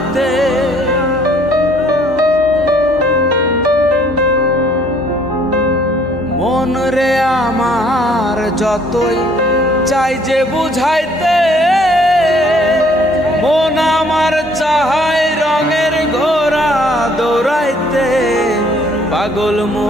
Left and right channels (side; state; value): both; normal; correlation 0.61